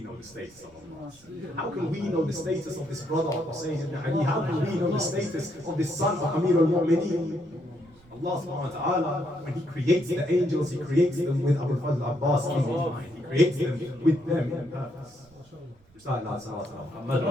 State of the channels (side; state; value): right; noise; rumble, 29 dB below the sound